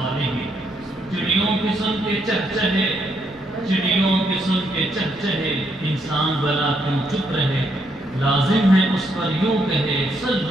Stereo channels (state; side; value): noise; right; rumble, 25 dB below the sound